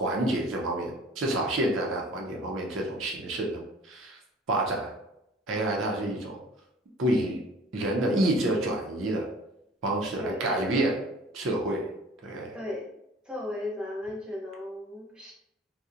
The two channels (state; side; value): normal; both; correlation 0.48